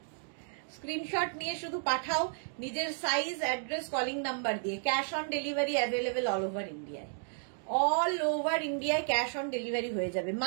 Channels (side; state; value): left; silent; digital silence